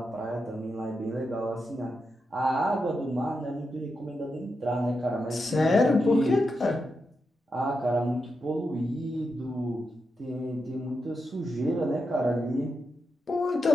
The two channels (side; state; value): both; normal; correlation 0.86